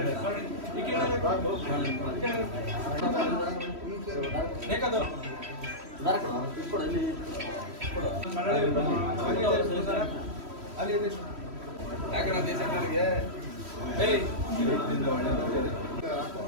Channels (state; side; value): late; left; 3.1 ms